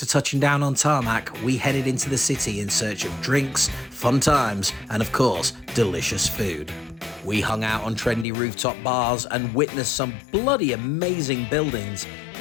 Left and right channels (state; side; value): drops out; right; at 8.2 s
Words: touching down on tarmac, we headed into the city in search of drinks, fun times, and of course, delicious food. We hung out on trendy rooftop bars and witnessed some bloody amazing buildings,